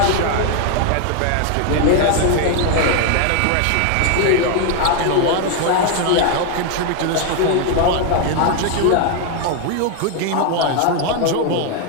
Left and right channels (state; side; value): different; both; correlation 0.01